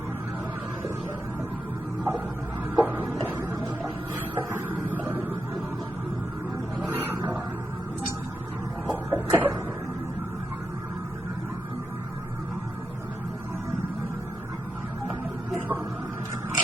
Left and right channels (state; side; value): normal; both; correlation 0.86